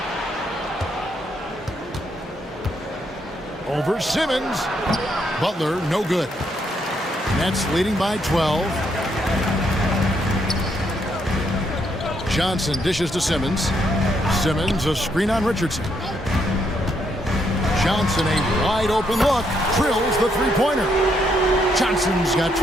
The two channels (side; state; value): both; normal; correlation 0.75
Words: Over Simmons. Butler, no good. Nets leading by 12. Johnson dishes to Simmons. Simmons, a screen on Richardson. Johnson, a wide open look. Drills the three-pointer. Johnson's got